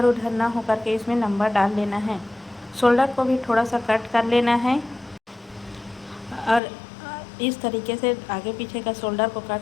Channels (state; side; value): drops out; right; at 6.6 s